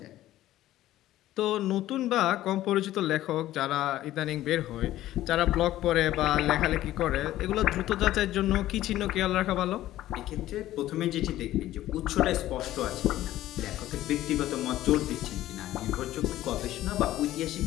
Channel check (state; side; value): quieter; right; 14.4 dB